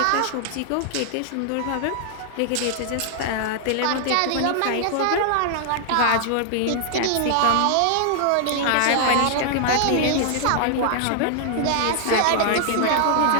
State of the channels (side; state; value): both; different; correlation -0.01